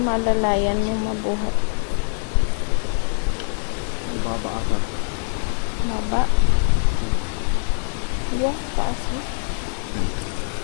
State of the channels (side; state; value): right; silent; digital silence